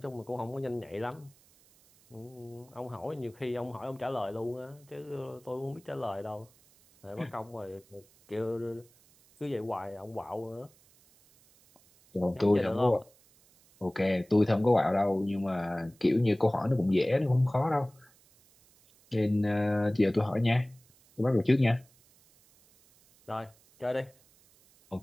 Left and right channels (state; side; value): noise; right; hiss, 30 dB below the sound